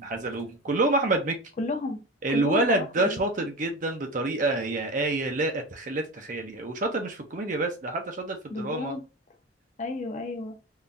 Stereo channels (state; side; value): normal; both; correlation 0.26